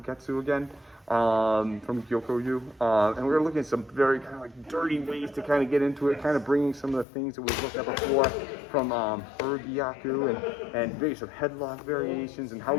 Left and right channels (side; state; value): right; drops out; at 7.1 s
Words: again from Gyokoryu. And we're looking at some very kind of like dirty ways to kind of get into it, kind of bringing some of the things that we've looked at before from Urgyaku and maybe some headlock variations and how